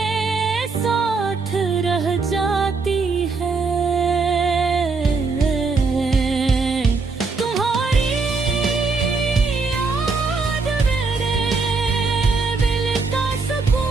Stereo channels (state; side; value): quieter; left; 4.3 dB